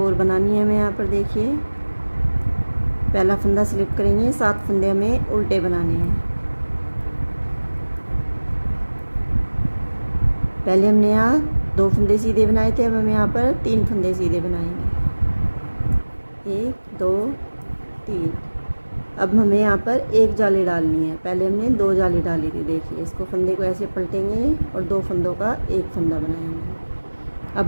और बनानी है हमें यहाँ पर। देखिए पहला फंदा स्लिप करेंगे, 7 फंदे हमें उल्टे बनाने हैं। पहले हमने यहाँ 2 फंदे सीधे बनाए थे, अब हम यहाँ पर 3 फंदे सीधे बनाएंगे। 1 2 3। अब हमें यहाँ पर एक जाली डालनी है, पहले हमने 2 जाली डाली थी। देखिए इसको फंदे को ऐसे पलटेंगे और 2 फंदों का एक फंदा बनाएंगे। अब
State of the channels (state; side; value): inverted; both; correlation -1.00